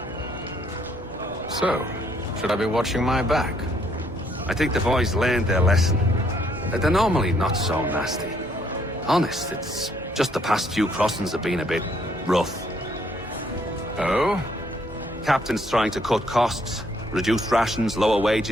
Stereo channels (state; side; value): normal; both; correlation 0.68